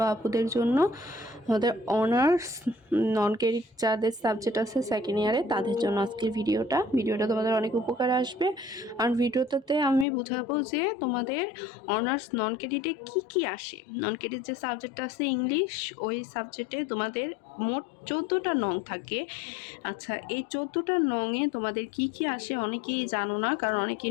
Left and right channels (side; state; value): right; drops out; at 10.1 s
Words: আপুদের জন্য, আমাদের অনার্স নন ক্রেডিট যাদের সাবজেক্ট আছে সেকেন্ড ইয়ারে তাদের জন্য আজকের ভিডিওটা তোমাদের অনেক উপকারে আসবে। আর ভিডিওটাতে আমি বোঝাবো যে তোমাদের অনার্স নন ক্রেডিটে কী আসে। নন ক্রেডিট যে সাবজেক্টটা আছে ইংলিশ, ওই সাবজেক্টে তোমাদের মোট 14টা নং থাকে। আচ্ছা, এই 14টা নংয়ে তোমাদের কি আসে অনেকেই জানো না, কারণ